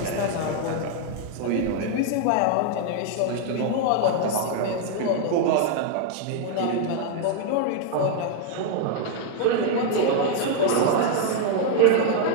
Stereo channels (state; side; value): different; both; correlation 0.00